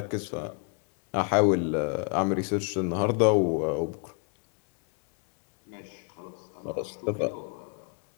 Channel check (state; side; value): quieter; right; 36.9 dB